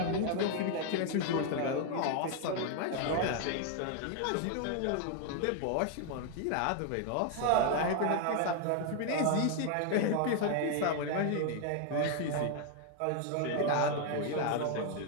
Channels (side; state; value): both; different; correlation 0.00